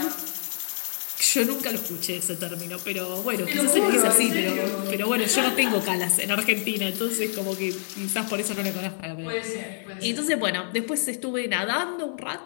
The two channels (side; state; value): right; silent; 57 dB below the other